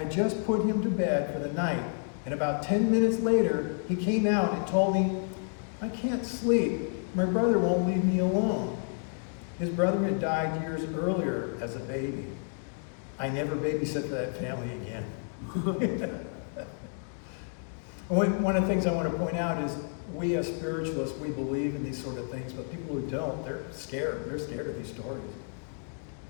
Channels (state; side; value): silent; right; 58 dB below the other